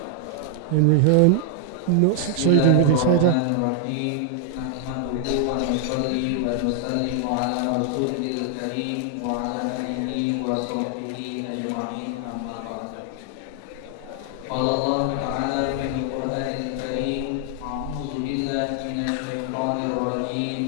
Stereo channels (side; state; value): both; different; correlation 0.00